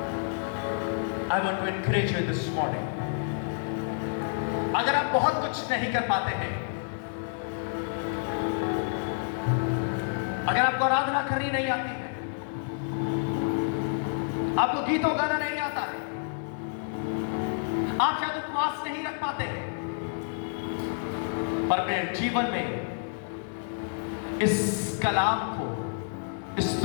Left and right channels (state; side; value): silent; right; 59 dB below the other